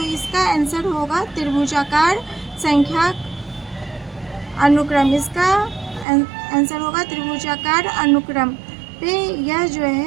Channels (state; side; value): drops out; left; at 6.1 s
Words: इसका आंसर होगा त्रिभुजाकार संख्या अनुक्रम। इसका आंसर होगा त्रिभुजाकार अनुक्रम पे यह जो